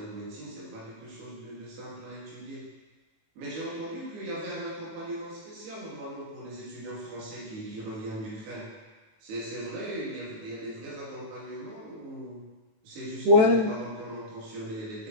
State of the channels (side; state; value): left; late; 18 ms